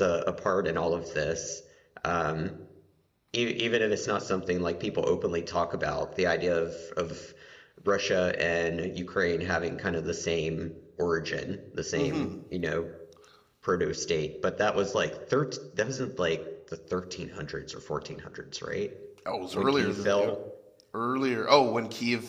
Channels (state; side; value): identical; both; correlation 1.00